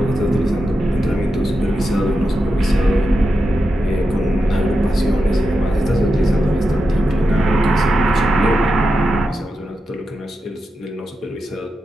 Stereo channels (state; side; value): normal; both; correlation 0.88